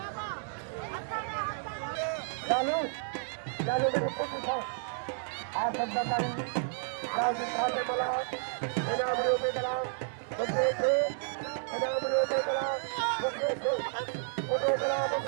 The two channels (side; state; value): left; silent; digital silence